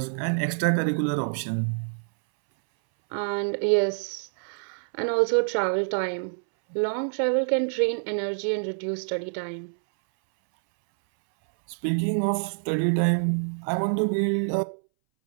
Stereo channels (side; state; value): left; silent; 61 dB below the other